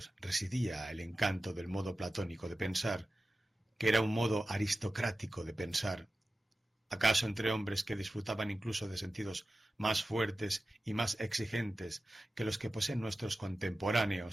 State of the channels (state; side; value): normal; both; correlation 0.95